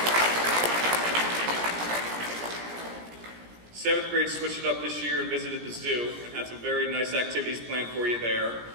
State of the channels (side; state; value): left; late; 17 ms